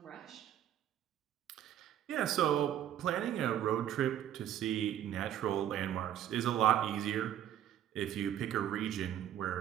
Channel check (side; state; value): left; quieter; 11.0 dB